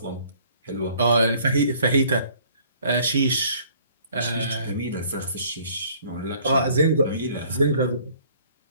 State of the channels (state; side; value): inverted; both; correlation -0.57